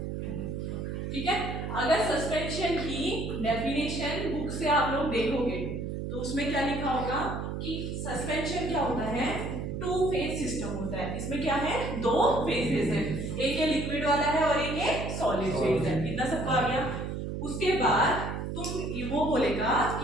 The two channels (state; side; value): noise; right; hum, 4 dB below the sound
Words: ठीक है, अगर सस्पेंशन की डेफिनेशन बुक से आप लोग देखोगे तो उसमें क्या लिखा होगा कि सस्पेंशन क्या होता है, टू फेज सिस्टम होता है। इसमें क्या है, दो फेजेस है, एक ये लिक्विड वाला है और एक ये सॉलिड फेज है। इतना सबको आ गया? उसके बाद तुम वो बोलेगा